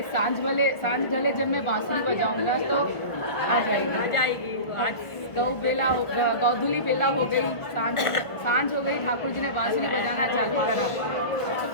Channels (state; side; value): late; right; 1.5 ms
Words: सांझ ढले जब मैं बांसुरी बजाऊंगा तो आ जाएगी। आज गौधुली बेला हो गई, सांझ हो गई, ठाकुर जी ने बांसुरी बजाना चालू करा। तो